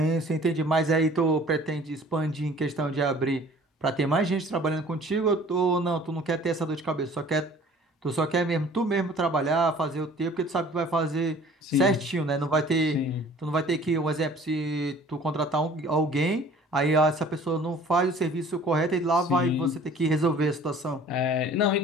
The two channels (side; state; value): both; normal; correlation 0.50